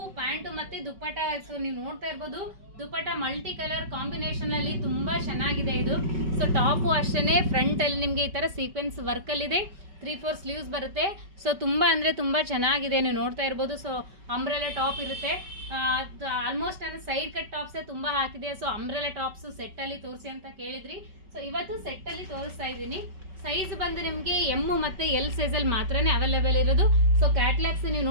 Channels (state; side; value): late; left; 5.2 ms